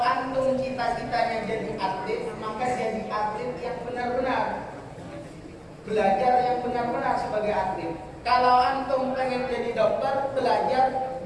antum cita-citanya jadi atlet, maka jadi atlet yang benar-benar, belajar yang benar-benar sebagai atlet. Kalau antum pengen jadi dokter, belajar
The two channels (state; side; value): identical; both; correlation 1.00